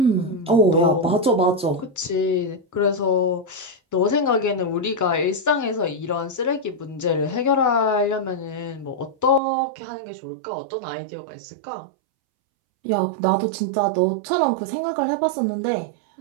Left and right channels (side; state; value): left; drops out; at 9.4 s